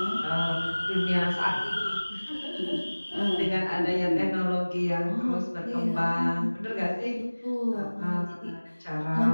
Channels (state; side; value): inverted; both; correlation -1.00